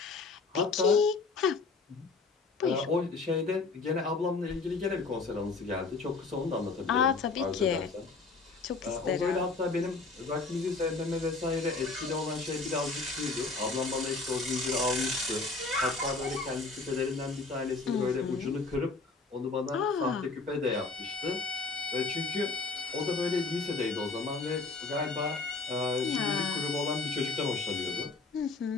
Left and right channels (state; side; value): quieter; right; 3.9 dB